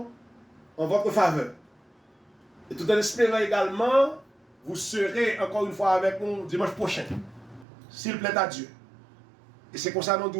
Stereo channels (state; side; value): drops out; left; at 7.7 s